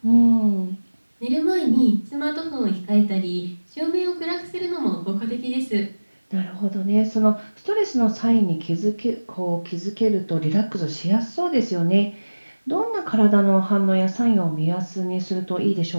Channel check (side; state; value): both; inverted; correlation -1.00